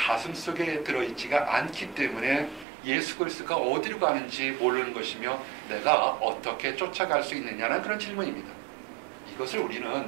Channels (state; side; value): drops out; left; at 2.7 s